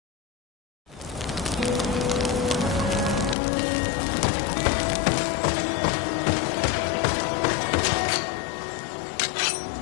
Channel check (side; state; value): right; drops out; at 3.4 s